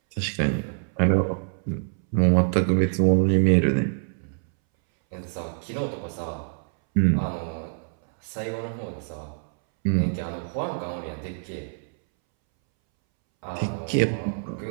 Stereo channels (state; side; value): silent; left; 61 dB below the other